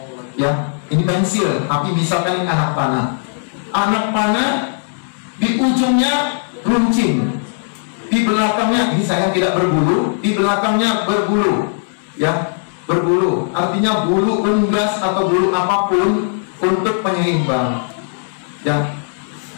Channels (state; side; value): silent; right; 67 dB below the other